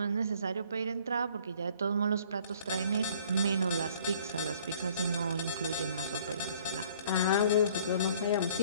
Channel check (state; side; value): inverted; both; correlation -0.56